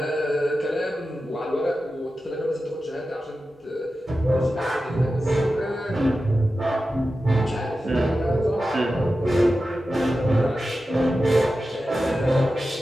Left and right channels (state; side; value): normal; both; correlation 0.93